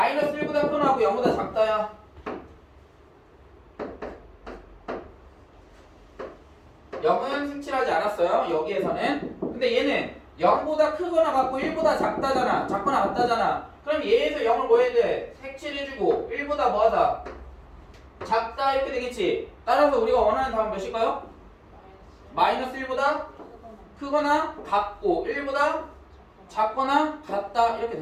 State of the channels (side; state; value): both; identical; correlation 1.00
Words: 1보다 크거나 하고 0보다 작다야. 0은 색칠하지 않았어요. 여기에서는. 근데 얘는 0보다 크거나 같고 1보다 작다잖아. 작거나 같다잖아. 그럼 얘에서 0을 뭐 해야 돼? 색칠해주고 1보다 뭐하다? 작다 이렇게 되겠지. 따라서 우리가 원하는 답은 몇일까요? 마이너스 1보다 크거나 같고 1보다 작거나 같다 이렇게